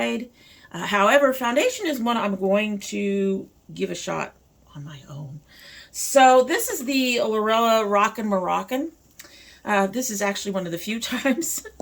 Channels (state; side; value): identical; both; correlation 1.00